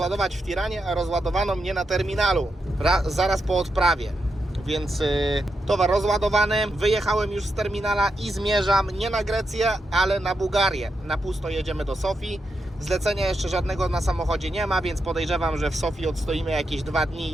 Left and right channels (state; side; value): normal; both; correlation 0.85